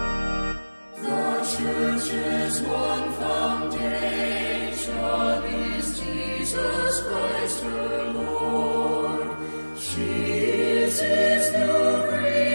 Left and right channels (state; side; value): inverted; both; correlation -1.00